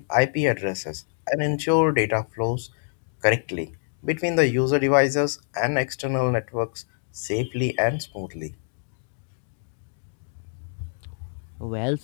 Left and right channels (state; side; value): silent; right; digital silence